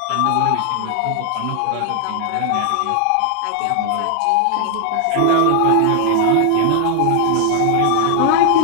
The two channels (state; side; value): different; both; correlation 0.00